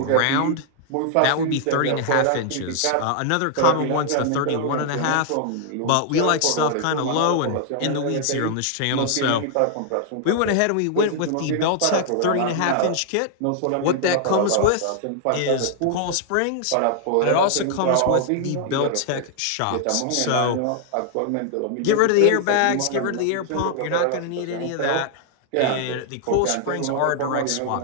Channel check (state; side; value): different; both; correlation 0.00